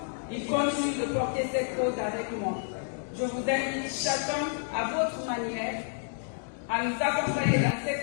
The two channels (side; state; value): right; silent; digital silence